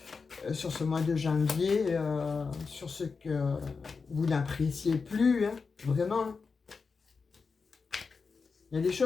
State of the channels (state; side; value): quieter; right; 4.9 dB